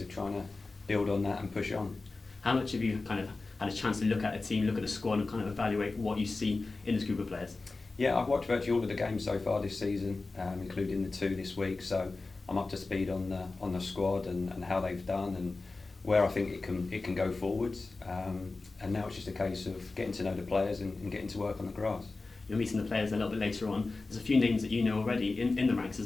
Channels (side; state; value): right; quieter; 3.6 dB